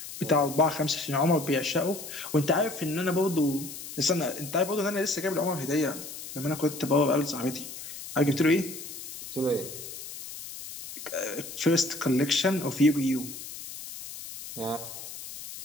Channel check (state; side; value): noise; left; hiss, 11 dB below the sound